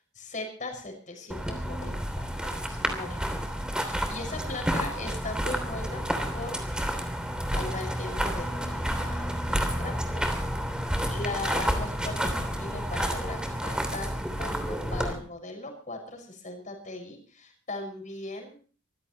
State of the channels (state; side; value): normal; both; correlation 0.74